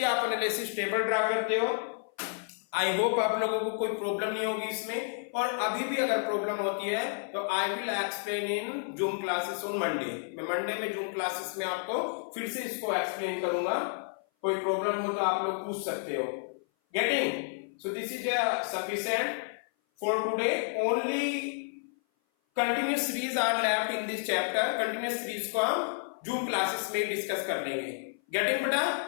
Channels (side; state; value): right; silent; 56 dB below the other